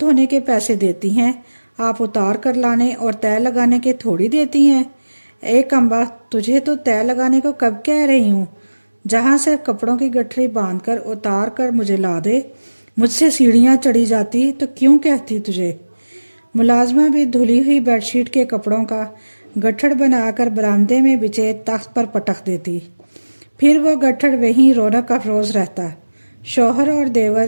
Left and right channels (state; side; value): inverted; both; correlation -1.00